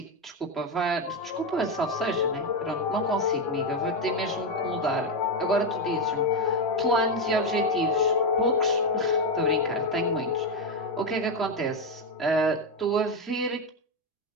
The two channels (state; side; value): normal; both; correlation 0.09